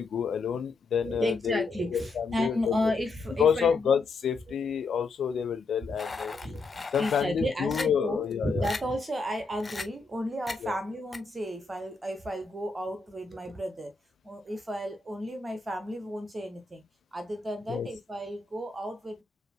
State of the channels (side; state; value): right; quieter; 3.9 dB